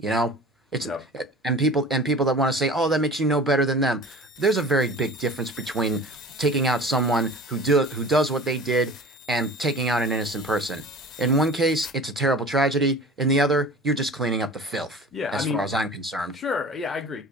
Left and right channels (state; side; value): normal; both; correlation 0.40